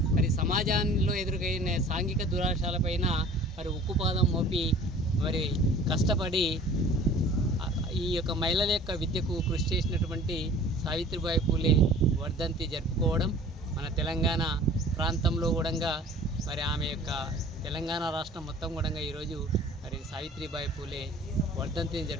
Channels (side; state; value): both; normal; correlation 0.46